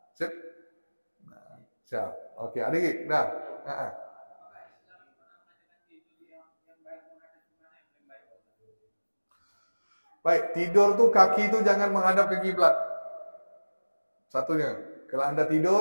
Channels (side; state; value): both; inverted; correlation -1.00